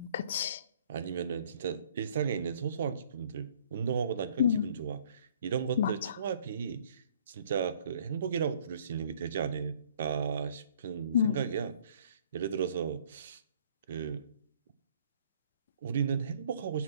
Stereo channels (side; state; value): both; inverted; correlation -0.58